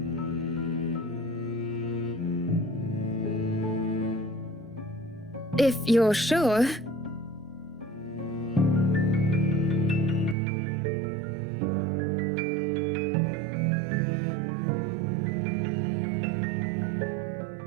if you're sure.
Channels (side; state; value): left; drops out; at 10.4 s